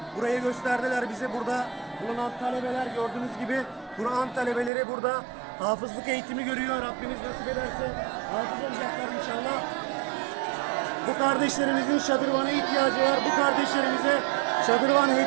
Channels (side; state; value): left; drops out; at 4.7 s